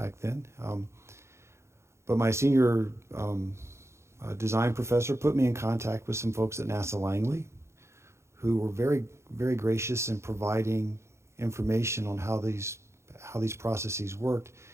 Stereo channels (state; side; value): late; left; 0.13 ms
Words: then. But my senior design professor put me in contact with some folks at NASA Langley who were very, very gracious in providing information on how these processes worked,